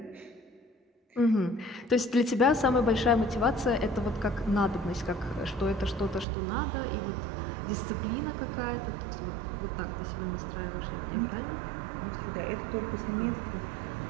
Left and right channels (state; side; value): drops out; left; at 6.2 s